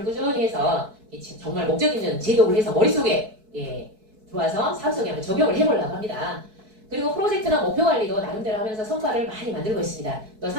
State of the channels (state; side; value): late; left; 4.6 ms